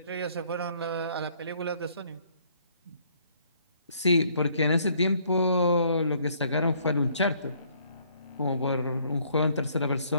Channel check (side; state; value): both; inverted; correlation -0.64